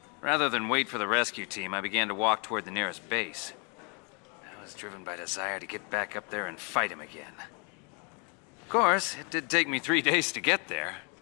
Rather than wait for the rescue team, I began to walk toward the nearest base. I was driven by desire to get back up there and fight him again. Of course, it did take me 3 days to get there.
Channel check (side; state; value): right; quieter; 34.7 dB